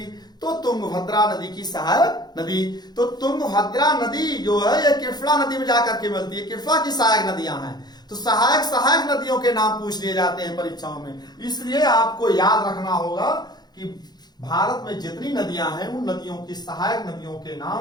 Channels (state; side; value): late; right; 0.20 ms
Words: तो तुंगभद्रा नदी की सहायक नदी। तो तुंगभद्रा नदी जो है ये कृष्णा नदी में जाकर के मिलती है, कृष्णा की सहायक नदियां हैं। तो सहायक नदियों के नाम पूछ लिए जाते हैं परीक्षाओं में। इसलिए आपको याद रखना होगा कि भारत में जितनी नदियां हैं उन नदियों की सहायक नदियों के